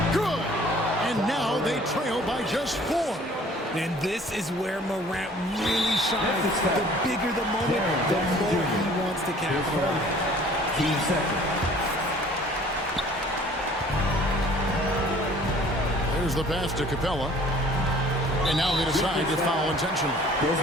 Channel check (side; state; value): both; normal; correlation 0.52